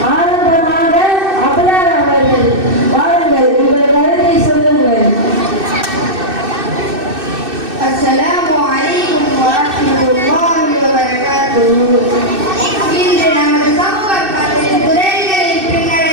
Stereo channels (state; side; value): late; left; 2.6 ms